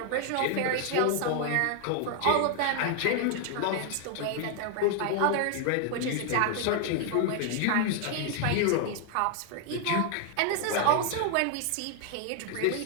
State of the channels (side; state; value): both; different; correlation 0.00